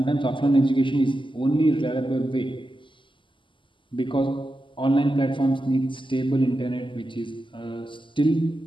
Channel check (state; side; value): late; right; 0.24 ms